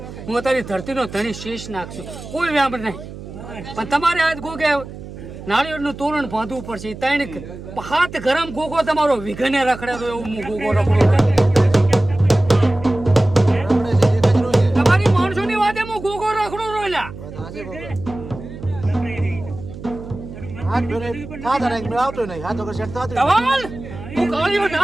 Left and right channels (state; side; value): noise; right; hum, 13 dB below the sound